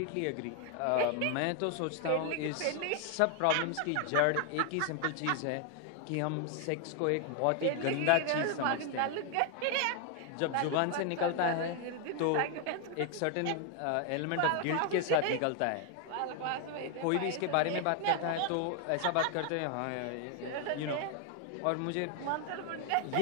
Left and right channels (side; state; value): both; different; correlation 0.00